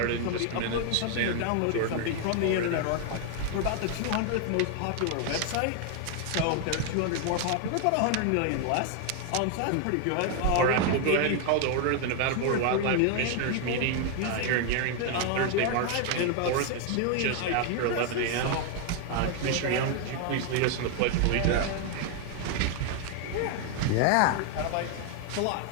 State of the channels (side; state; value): both; different; correlation 0.00